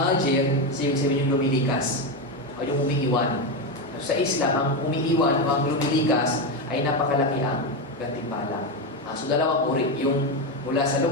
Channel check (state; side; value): normal; both; correlation 0.12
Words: ibig sabihin yung lumilikas. O yung umiiwan. Sa Islam, ang umiiwan o ang lumilikas ay napakalaki ang gantimpala. So dalawang uri, yung mula sa